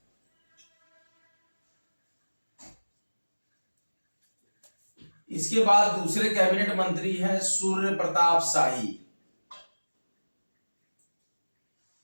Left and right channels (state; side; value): inverted; both; correlation -1.00